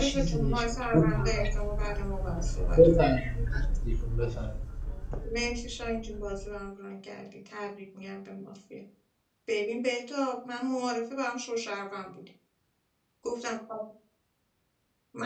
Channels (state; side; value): identical; both; correlation 1.00